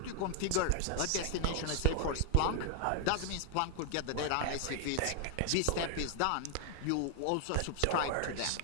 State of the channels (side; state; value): both; different; correlation 0.00